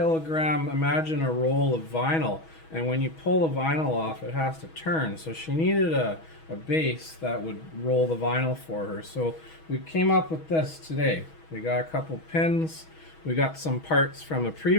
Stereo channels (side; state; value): right; late; 6.2 ms